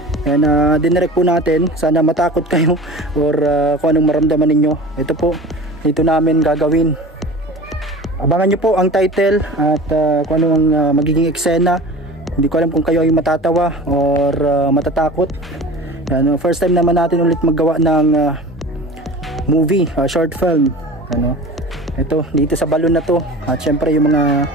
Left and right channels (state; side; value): normal; both; correlation 0.37